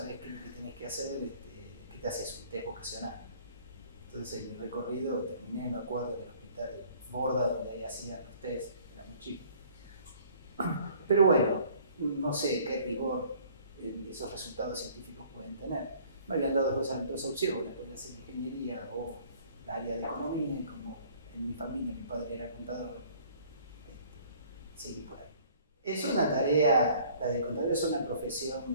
qué es lo que tenés que hacer, ¿qué te haces? Un test vocacional. Entonces el recorrido terminé, me acuerdo, del hospital Borda, donde ahí hacían los test, era muy chico. Pero bueno, no sé qué rigor esos resultados científicos pueden tener. Me habían dado dos opciones, podía hacer ingeniería o el área de economía, y como en mi familia mi padre era contador, seguí por ahí. Es una tarea, la de contador es una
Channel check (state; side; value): inverted; both; correlation -0.55